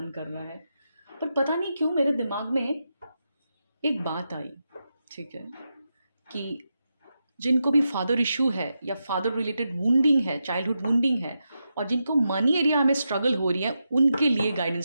कर रहा है, पर पता नहीं क्यों मेरे दिमाग में एक बात आई। ठीक है। कि जिनको भी फादर इशू है या फादर रिलेटेड वुंडिंग है, चाइल्डहुड वुंडिंग है, और जिनको मनी एरिया में स्ट्रगल हो रही है, उनके लिए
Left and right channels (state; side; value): inverted; both; correlation -0.87